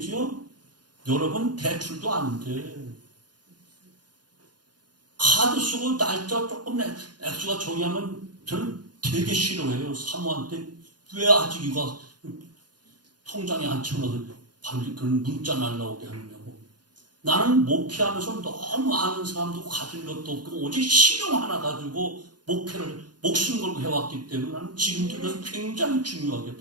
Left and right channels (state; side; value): late; left; 0.70 ms